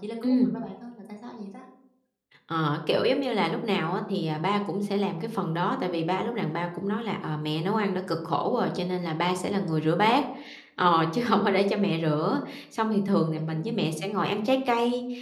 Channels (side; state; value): both; identical; correlation 1.00